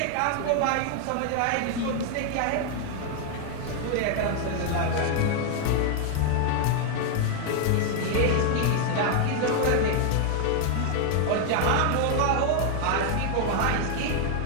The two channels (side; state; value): both; different; correlation 0.00